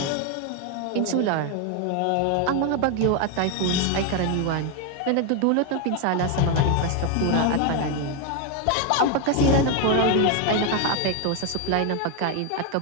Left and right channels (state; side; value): different; both; correlation 0.01